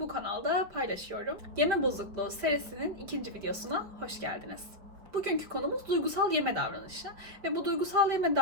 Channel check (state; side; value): late; left; 5.3 ms